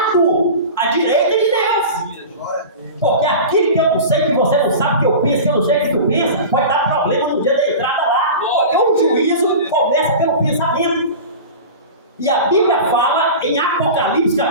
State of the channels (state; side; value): inverted; both; correlation -0.32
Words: à direita de Deus. Porque aquilo que eu não sei, que você não sabe, que eu penso, que eu não sei que tu pensa, pode dar problema no dia da entrada lá. Porque o juízo começa pelo pensamento. E a Bíblia fala em Apocalipse